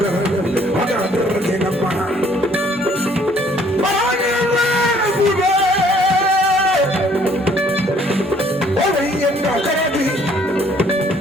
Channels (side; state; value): both; normal; correlation 0.61